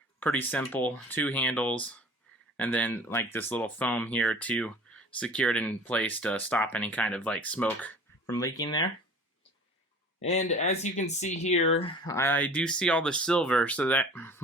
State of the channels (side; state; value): both; normal; correlation 0.44